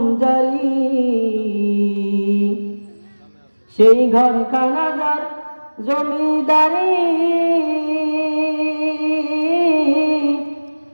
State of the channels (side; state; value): both; inverted; correlation -1.00